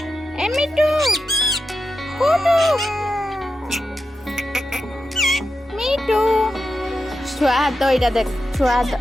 এ মিট্টু, কুটু, মিট্টু। ছুয়া হাত এইটা দেখ, ছুয়া হাত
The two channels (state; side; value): normal; both; correlation 0.89